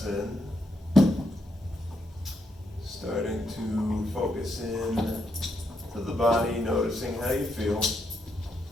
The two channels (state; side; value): normal; both; correlation 0.79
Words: in. Starting to focus in to the body, noticing how you feel.